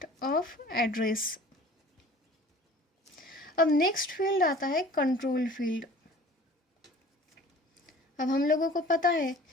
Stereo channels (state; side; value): normal; both; correlation 0.46